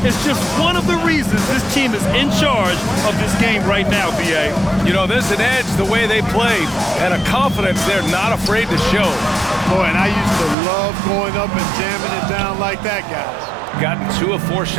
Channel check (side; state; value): left; drops out; at 10.6 s